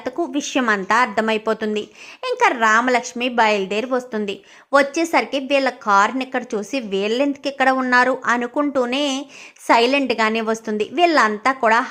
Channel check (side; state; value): both; identical; correlation 1.00